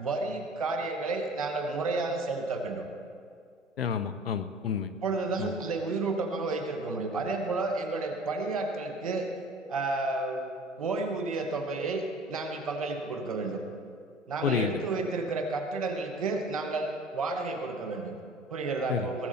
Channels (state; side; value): normal; both; correlation 0.46